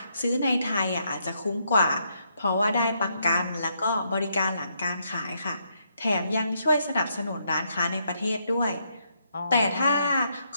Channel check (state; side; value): inverted; both; correlation -0.76